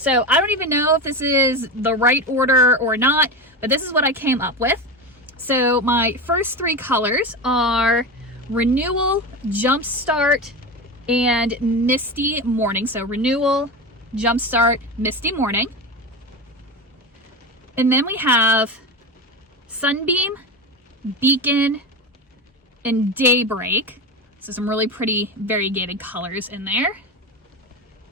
I don't even know if this is the right order or not, but this is what I came up with. So my first 3 colors are Renewal, Jumpstart, and Misty Morning. So Renewal, Jumpstart, Misty Morning. And then we have Sunbeam, Beacon, and Daybreak. So some really pretty variegated colors in there.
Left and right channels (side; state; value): both; normal; correlation 0.22